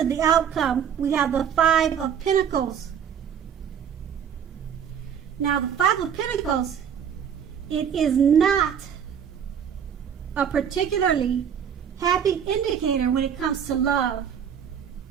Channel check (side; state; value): left; quieter; 8.2 dB